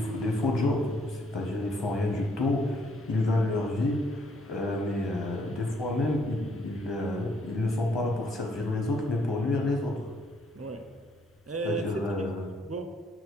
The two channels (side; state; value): both; normal; correlation 0.69